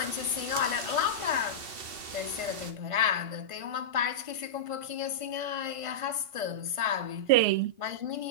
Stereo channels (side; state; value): left; late; 2.7 ms